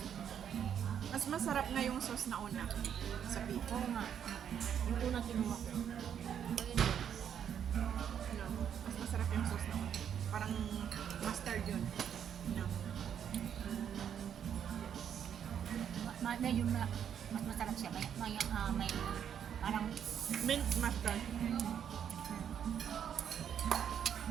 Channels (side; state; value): left; quieter; 8.7 dB